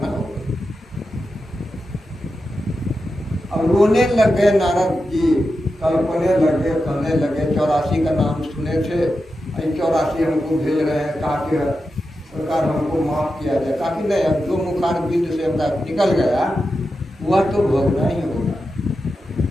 होगा। और रोने लग गए नारद जी, कल्पने लगे, कहने लगे 84 का नाम सुने थे, 84 हमको भेज रहे हैं, कहा कि सरकार हमको माफ किया जाए। कहा कि नहीं, अब जो मुखार बिंद से हमरा निकल गया वह तो भोगना ही होगा।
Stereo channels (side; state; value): both; normal; correlation 0.90